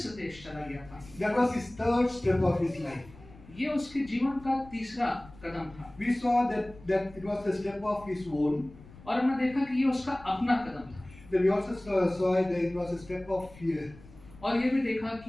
देश चला गया था. That was his third step of his life. ये उसके जीवन का तीसरा कदम था. We saw that it was a step of his own. और हमने देखा कि ये उसका अपना कदम था. Then we also saw that it was a step of fear. और ये भी देखा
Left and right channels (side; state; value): left; noise; rumble, 21 dB below the sound